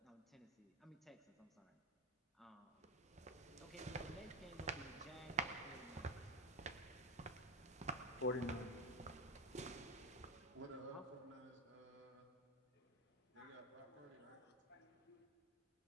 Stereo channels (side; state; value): both; normal; correlation 0.11